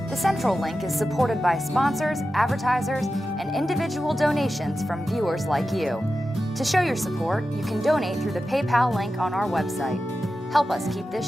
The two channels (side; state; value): both; normal; correlation 0.92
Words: The Central Link is supported by sponsors, advertisers, and individual donations from viewers like you. To show your support, you can donate through the PayPal link on our website. Help us keep this